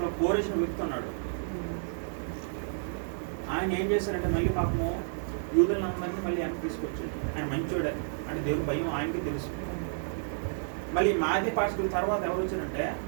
కోరేసిన వ్యక్తి ఉన్నాడు. ఆయన ఏం చేశారంటే మళ్ళీ పాపము యూదులందరినీ మళ్ళీ వెనక్కి తీసుకొచ్చాడు. ఆయన మంచోడే అంటే దేవుని భయం ఆయనకి తెలుసు. మళ్ళీ మాదియా పారసీకుల తర్వాత ఎవరు వచ్చారంటే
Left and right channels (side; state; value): left; silent; digital silence